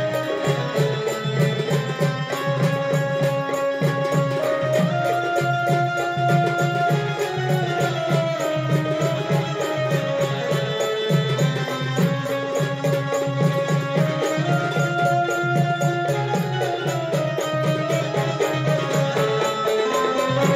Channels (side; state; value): both; identical; correlation 1.00